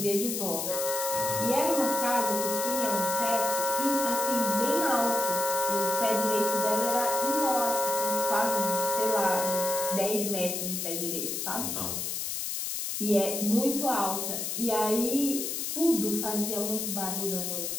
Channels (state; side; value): noise; left; hiss, 3 dB below the sound